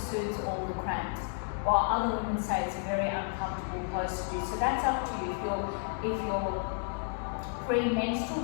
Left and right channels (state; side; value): silent; right; 57 dB below the other